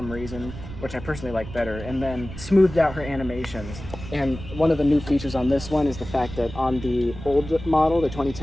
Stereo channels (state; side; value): noise; right; rumble, 12 dB below the sound